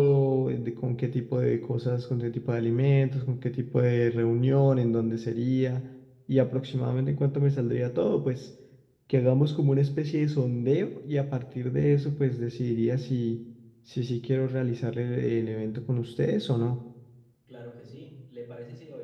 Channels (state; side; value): identical; both; correlation 1.00